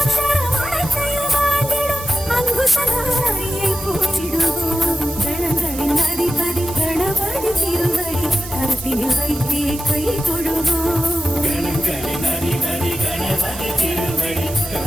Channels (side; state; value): right; noise; hiss, 13 dB below the sound